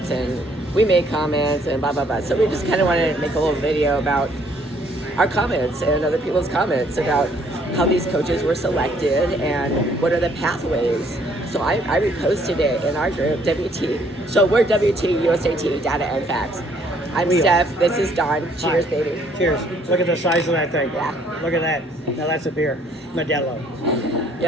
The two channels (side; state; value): both; normal; correlation 0.64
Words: and we made comments, and blah blah blah. So we just kind of wanted to make a little video about our comments and other people's comments about how these coaches were selected and what are the pathways. So I reposted it in our group, WT. So we're WT, USAT, Data and Facts. I'm Steph. This is Don. Cheers, Hi. baby. Cheers. Look at the size of that thing. Yeah. Look at that. Now that's a beer. Modelo.